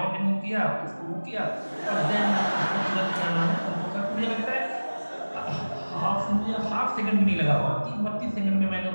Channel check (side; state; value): both; inverted; correlation -1.00